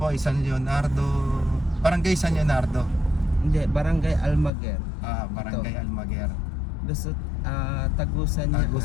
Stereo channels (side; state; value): right; drops out; at 4.5 s